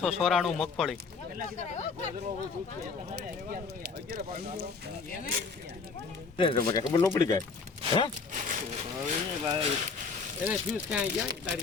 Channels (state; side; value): quieter; right; 4.8 dB